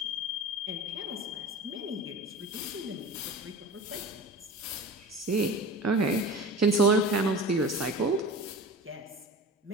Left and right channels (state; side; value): normal; both; correlation 0.35